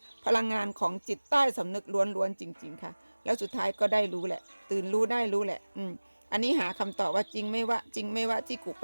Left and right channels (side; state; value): both; inverted; correlation -1.00